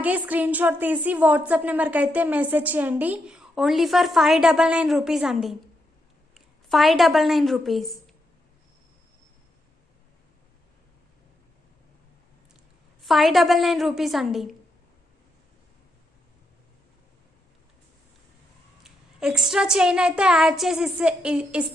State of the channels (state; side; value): normal; both; correlation 0.82